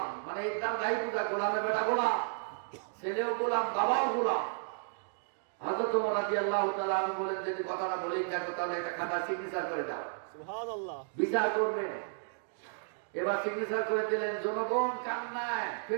মানে একদম গাই পূজা, গোলামের বেটা গোলাম, ছেলেও গোলাম, বাবাও গোলাম। হযরত ওমর রাদিয়াল্লাহু তাআলা আনহু বলেন, যদি কথাটা বলেই থাকো তাহলে একটা খাতা সিগনেচার করে দাও, সুবহানাল্লাহ, বিচার করবে। এবার সিগনেচার করে দিলেন। জনগণ কান্নায়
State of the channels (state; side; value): silent; left; digital silence